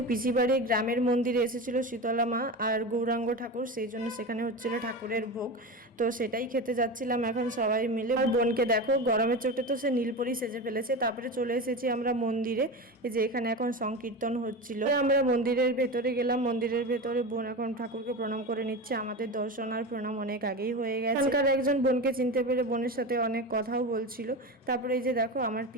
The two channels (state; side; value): normal; both; correlation 0.24